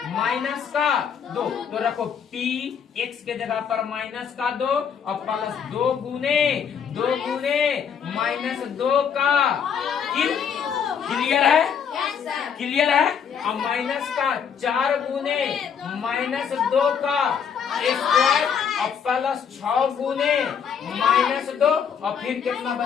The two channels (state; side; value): quieter; right; 7.4 dB